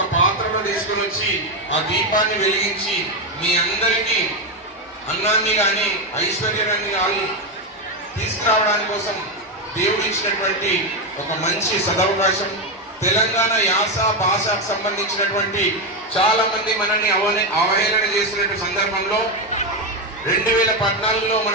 పాత్రలో తీసుకుని వచ్చి ఆ దీపాన్ని వెలిగించి మీ అందరికీ అన్నాన్ని కానీ ఐశ్వర్యాన్ని కానీ తీసుకురావడానికి కోసం దేవుడు ఇచ్చినటువంటి ఒక మంచి సదవకాశం. తెలంగాణ యాస భాషకు సంబంధించినటువంటి చాలా మంది మనల్ని అవహేళన చేస్తున్న సందర్భంలో 2014లో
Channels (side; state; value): both; normal; correlation 0.09